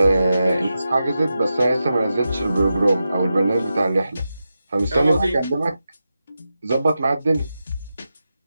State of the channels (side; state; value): both; inverted; correlation -0.90